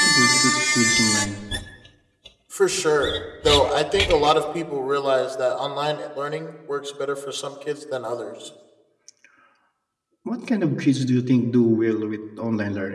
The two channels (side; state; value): both; identical; correlation 1.00